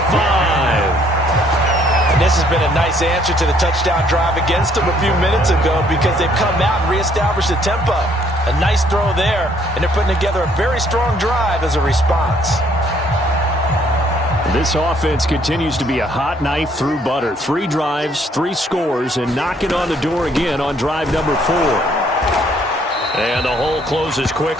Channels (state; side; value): normal; both; correlation 0.65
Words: 5. And this has been a nice answer to the touchdown drive against them a few minutes ago, because they've come out and reestablished the tempo. A nice throw there, and they're putting together a very strong drive as a response. This offense continues to be a hot knife through butter. 3 drives, 3 scores, and knocking on the door again on drive number 4. And the hole closes